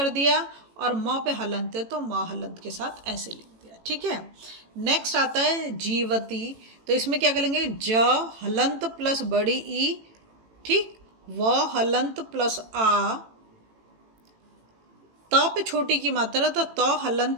दिया, और म पे हलंत है तो म हलंत के साथ ऐसे लिख दिया। ठीक है, नेक्स्ट आता है जीवती, तो इसमें क्या करेंगे, ज हलंत प्लस बड़ी ई, ठीक, व हलंत प्लस आ, त पे छोटी की मात्रा तो त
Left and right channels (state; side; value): late; left; 18 ms